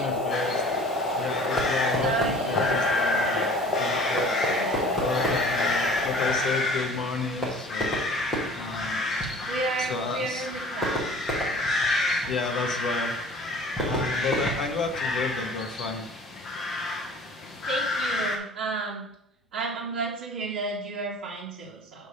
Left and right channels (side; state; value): both; normal; correlation 0.46